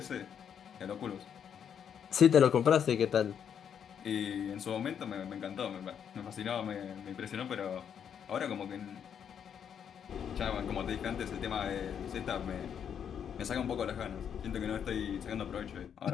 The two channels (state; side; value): quieter; right; 8.2 dB